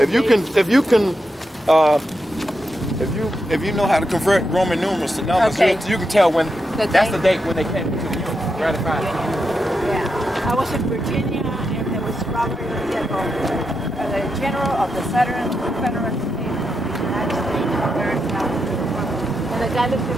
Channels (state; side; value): normal; both; correlation 0.85